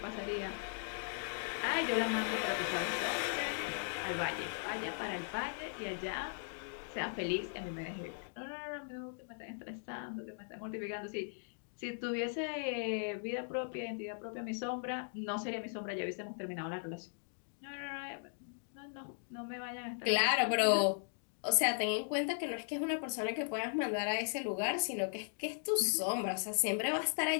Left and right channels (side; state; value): right; silent; digital silence